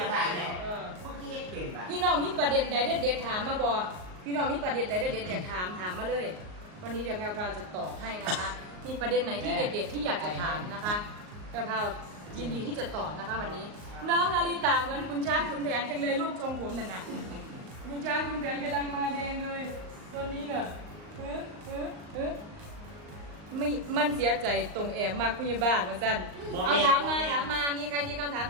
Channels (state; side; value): late; left; 38 ms